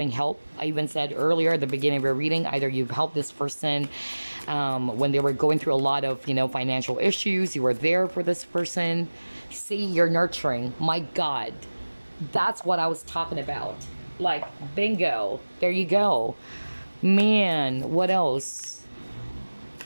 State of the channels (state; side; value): inverted; both; correlation -1.00